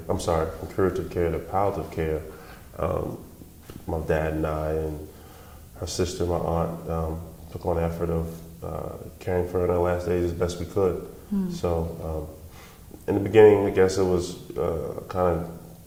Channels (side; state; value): both; identical; correlation 1.00